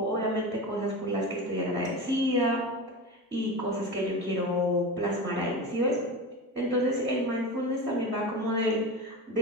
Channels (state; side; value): normal; both; correlation 0.26